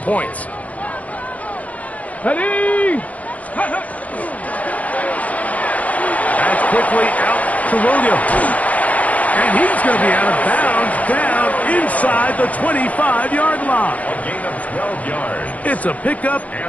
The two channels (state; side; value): late; right; 0.071 ms